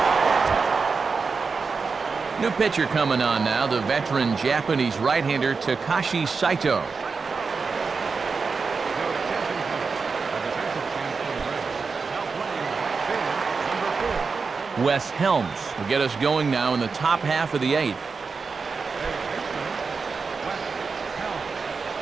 New pitcher coming on now, the veteran Japanese right-hander Takashi Saito. Wes Helms will get us going now in the top half of the 8th.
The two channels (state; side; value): quieter; left; 4.8 dB